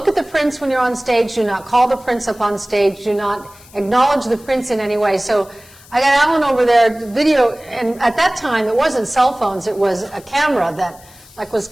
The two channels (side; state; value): left; noise; hiss, 24 dB below the sound